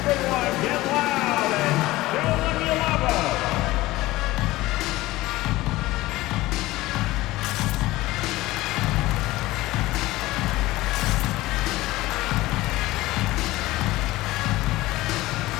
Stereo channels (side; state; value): right; quieter; 18.3 dB